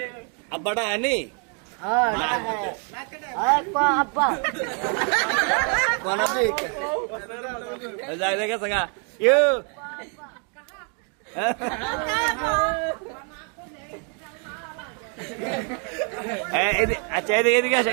আব্বাটা আনি আব্বা কোন আপনি যাই দেখে সঙ্গা ইউ আচ্ছা এদিকে এদিকে আসেন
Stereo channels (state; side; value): quieter; left; 40.0 dB